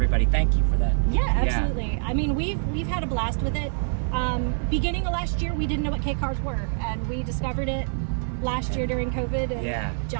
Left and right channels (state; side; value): silent; left; 62 dB below the other